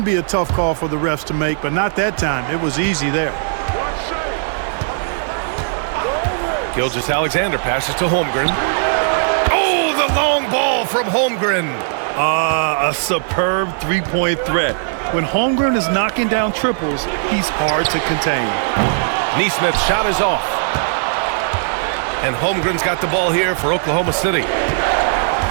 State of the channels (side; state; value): left; silent; digital silence